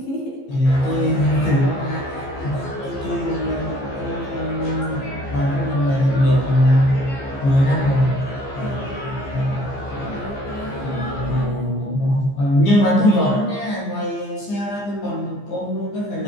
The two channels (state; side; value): late; right; 15 ms